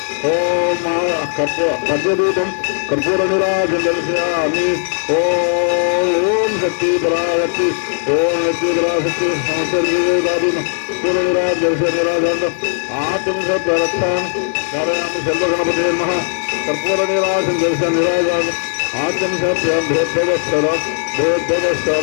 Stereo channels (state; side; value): silent; right; digital silence